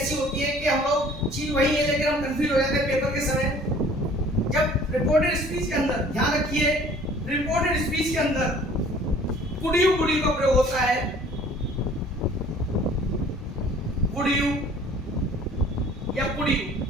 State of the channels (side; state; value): both; normal; correlation 0.52